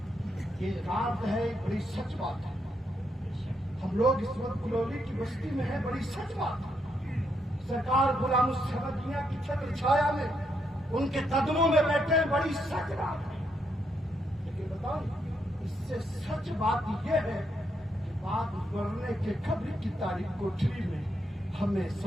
یہ رات ہے، بڑی سچ بات ہے، ہم لوگ اس وقت گلولی کی بستی میں ہیں، بڑی سچ بات ہے، سرکار غلام الصمد میاں کی چھتر چھایا میں ان کے قدموں میں بیٹھے ہیں، بڑی سچ بات ہے، لیکن بتاؤ اس سے سچ بات یہ ہے کہ بعد مرنے کے قبر کی تاریخ کوٹری میں ہمیں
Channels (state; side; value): normal; both; correlation 0.78